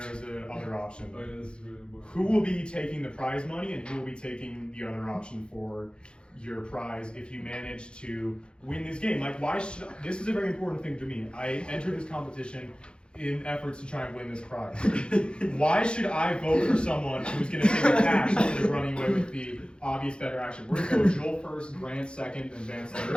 is a other option. Oh, yeah, this is really important. Who will be taking the prize money, and who will be taking the other option for your prize if you manage to win this game? Like, why should this is a very important thing to me. I entered this competition in efforts to try and win this prize. Why should I vote for someone who's going to take the cash instead of running away with the obvious better action? We're going to go Joel first, Grant second, and Vance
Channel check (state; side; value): late; right; 0.054 ms